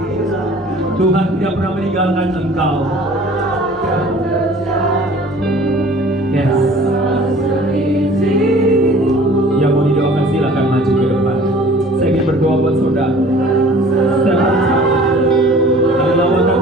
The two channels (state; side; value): normal; both; correlation 0.48